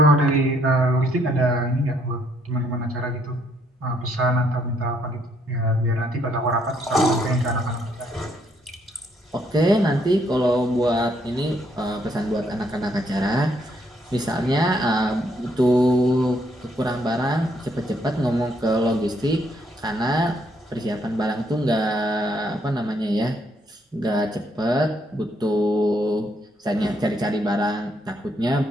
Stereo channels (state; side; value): normal; both; correlation 0.71